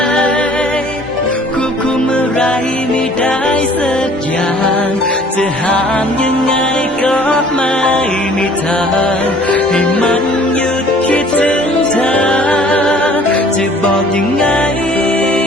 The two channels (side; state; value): both; normal; correlation 0.53